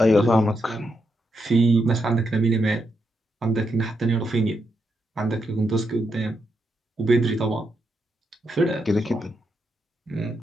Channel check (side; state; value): both; normal; correlation 0.82